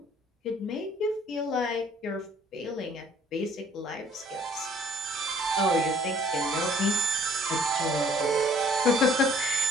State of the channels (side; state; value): both; normal; correlation 0.57